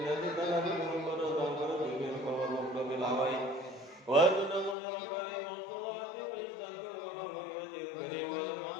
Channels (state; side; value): drops out; right; at 4.8 s